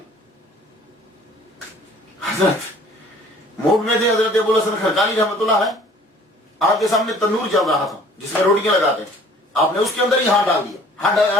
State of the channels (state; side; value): normal; both; correlation 0.52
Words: حضرت موڈ میں تھے حضرت ابو الحسن خرقانی رحمۃ اللہ علیہ. آپ کے سامنے تندور چل رہا تھا جس میں روٹیاں لگاتے ہیں. آپ نے اس کے اندر ہی ہاتھ ڈال دیا. ہاتھ